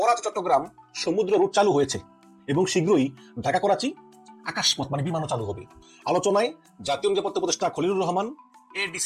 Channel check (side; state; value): both; identical; correlation 1.00